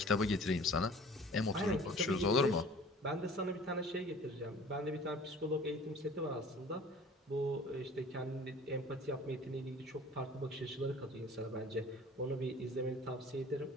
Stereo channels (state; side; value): normal; both; correlation 0.47